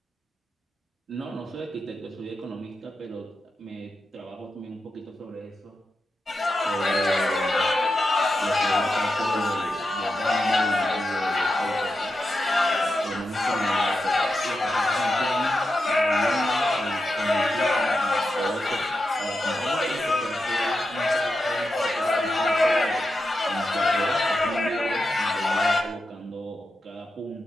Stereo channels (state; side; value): normal; both; correlation 0.88